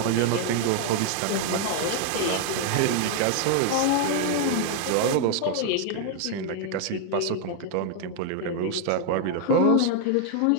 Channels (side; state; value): both; different; correlation 0.00